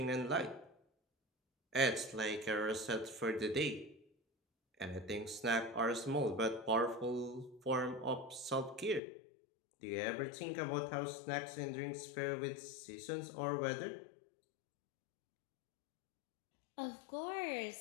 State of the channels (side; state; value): right; drops out; at 9.0 s